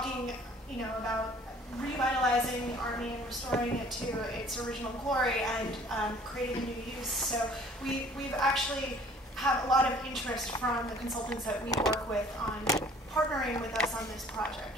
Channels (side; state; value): both; normal; correlation 0.54